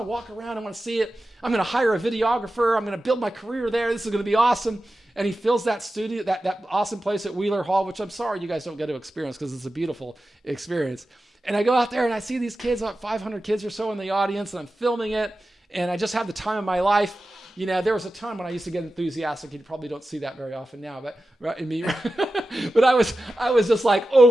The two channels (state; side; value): normal; both; correlation 0.93